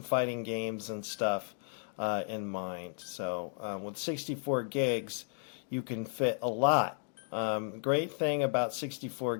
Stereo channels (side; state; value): right; silent; 55 dB below the other